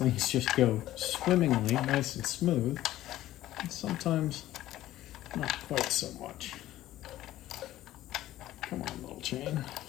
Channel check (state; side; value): quieter; right; 14.5 dB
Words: just go swimmingly, nice and smooth, and sometimes not quite so much. Come on, little chain.